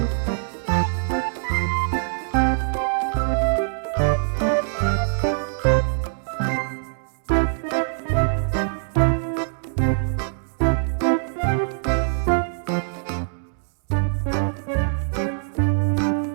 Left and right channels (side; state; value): left; silent; digital silence